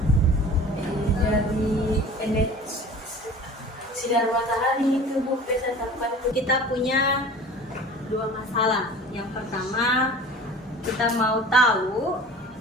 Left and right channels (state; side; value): normal; both; correlation 0.41